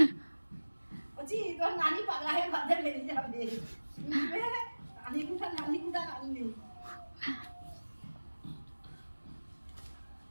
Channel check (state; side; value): inverted; both; correlation -1.00